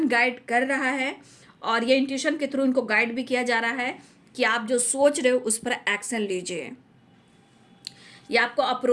गाइड कर रहा है, और ये इंट्यूशन के थ्रू इनको गाइड भी किया जा रहा है कि आप जो सोच रहे हो उस पर एक्शन लीजिए। ये आपको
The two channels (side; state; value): both; identical; correlation 1.00